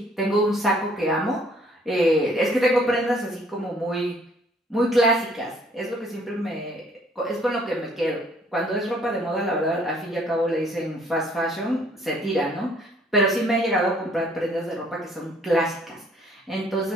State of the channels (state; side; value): normal; both; correlation 0.61